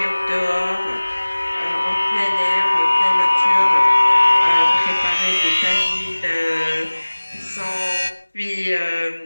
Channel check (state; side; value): inverted; both; correlation -1.00